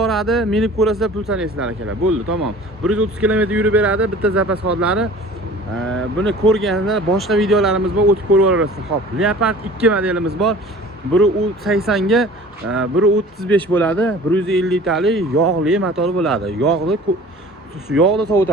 Minib ko'rasizlar, pul sanaysizlar akalar. Bo'ldi, tamom. 130 km yurib beradi bitta zapas xodlari. Buni ko'rganlar boshqa videolarimiz bor, o'tib ko'rib olasizlar. Xo'p, Leopard 2 modelimiz bor. Biri 80 ga, biri 35 bo'ladi. 150 litalik yog'li motor bo'ladi. Yog'da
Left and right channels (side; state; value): both; normal; correlation 0.44